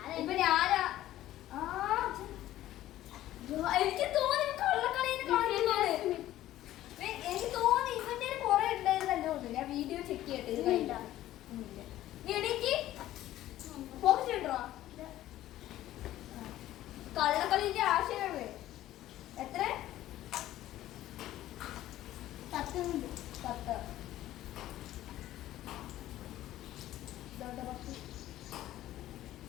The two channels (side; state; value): right; quieter; 14.1 dB